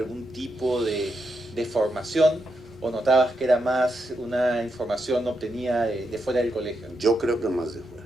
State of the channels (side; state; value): both; normal; correlation 0.83